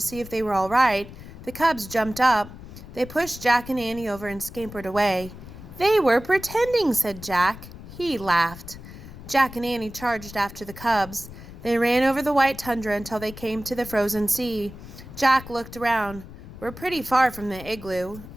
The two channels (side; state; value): left; noise; rumble, 15 dB below the sound